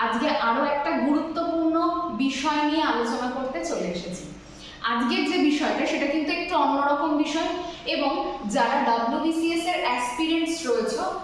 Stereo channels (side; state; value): both; identical; correlation 1.00